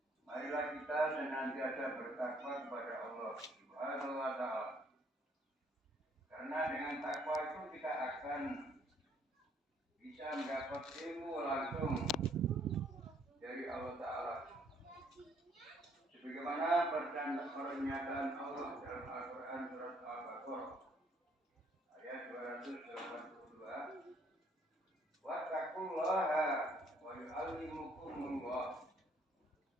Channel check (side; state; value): both; normal; correlation 0.65